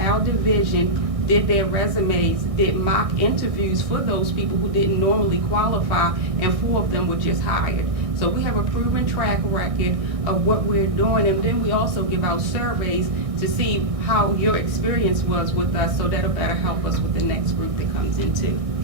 our division, did their resumes, did mock interviews for those people who didn't normally qualify, and 4 of them were just hired. So we have a proven track record of what we're doing, and then we also give out surveys to see how your experience was with us, so that'll better help us with the next group that comes in too.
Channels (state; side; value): late; left; 1.6 ms